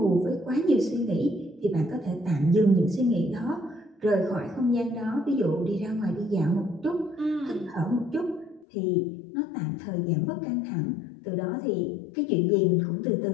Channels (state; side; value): drops out; right; at 8.7 s